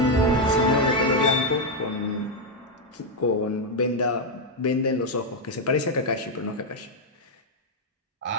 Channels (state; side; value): normal; both; correlation 0.02